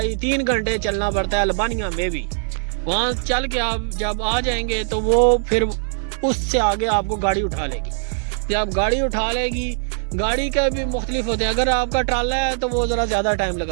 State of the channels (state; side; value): silent; left; 55 dB below the other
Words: گھنٹے چلنا پڑتا ہے البانیہ میں بھی۔ وہاں چل کے آپ جب آ جائیں گے تو وہ پھر اس سے آگے آپ کو گاڑی اٹھا لے گی، جب گاڑی اٹھا لے گی، گاڑی کا بھی مختلف ہوتے ہیں، اگر آپ کا ٹرالا ہے تو وہ ذرا زیادہ ٹائم